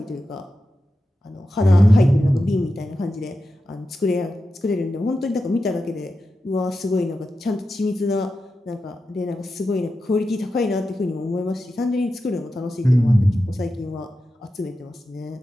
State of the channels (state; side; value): normal; both; correlation 0.91